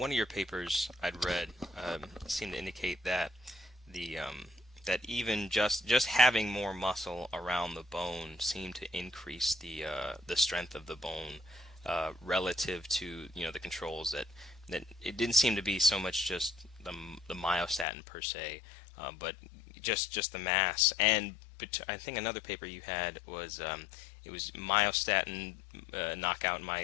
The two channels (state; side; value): drops out; right; at 17.9 s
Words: of your papers I'd read seemed to indicate that that even just having more muscle around the bone seemed to increase the strength of the bone relative to the controls that it didn't seem to be so much just the myostatin per se, but just the mass. But I think another paper you had was it was myostatin knockout